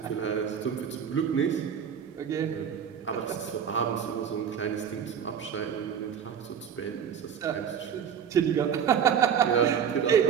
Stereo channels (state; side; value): quieter; left; 7.9 dB